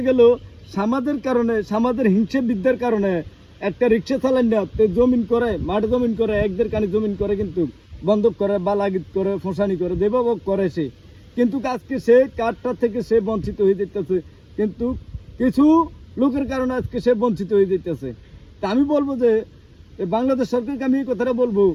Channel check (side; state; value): both; identical; correlation 1.00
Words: গেল সমাজের কারণে, সমাজের হিংসা বিদ্যার কারণে একটা রিক্সা চালান না জমিন করে, মাঠ জমিন করে, একদের কানে জমিন করে, কিন্তু বন্ধক করে বা লাগিত করে, ফোঁসানি করে, দেবভোগ করে সে। কিন্তু আজকে সে কার্ডটা থেকে সে বঞ্চিত হয়ে যেতেছে, কিন্তু কিছু লোকের কারণে আজকে সে বঞ্চিত হয়ে যেতেছে। তা আমি বলবো যে বাংলাদেশ সরকারকে আমি এই কথাটা বলবো